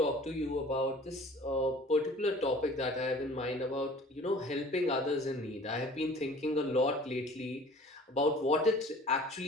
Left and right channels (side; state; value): both; normal; correlation 0.48